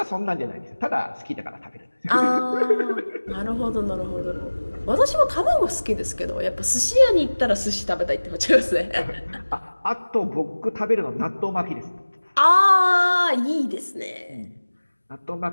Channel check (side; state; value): both; inverted; correlation -1.00